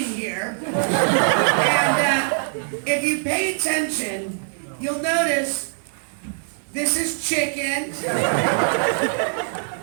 here. And if you pay attention, you'll notice this is chicken.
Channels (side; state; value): left; silent; 58 dB below the other